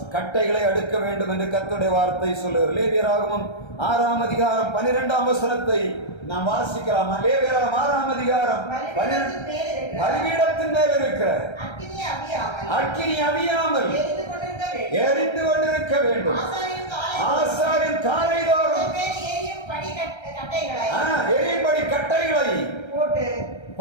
கட்டைகளை அடுக்க வேண்டும் என்று கர்த்தருடைய வார்த்தை சொல்லுகிறது. லேவியராகமம் 6ஆம் அதிகாரம் 12ஆம் வசனத்தை நாம் வாசிக்கலாம். லேவியராகமம் 6ஆம் அதிகாரம் பலிபீடத்தின் மேல் இருக்கிற அக்கினி அவியாமல் எரிந்து கொண்டிருக்க வேண்டும். ஆசாரியன் காலைதோறும் எரியும்படி கட்டைகளை போட்டு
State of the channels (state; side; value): late; right; 1.3 ms